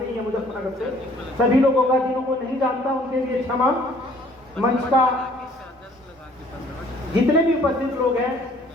ही है मुजफ्फरनगर से। सभी लोगों का जिन्हों को नहीं जानता उनके लिए क्षमा। मंच का जितने भी उपस्थित लोग हैं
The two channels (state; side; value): normal; both; correlation 0.57